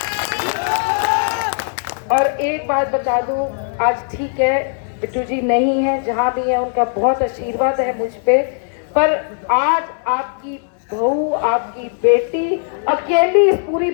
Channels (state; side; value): silent; right; digital silence